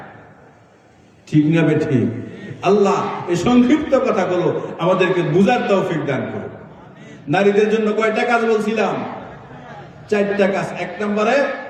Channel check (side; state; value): both; identical; correlation 1.00